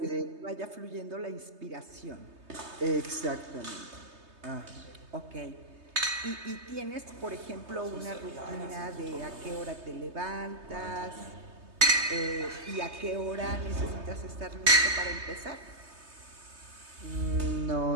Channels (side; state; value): left; late; 3.2 ms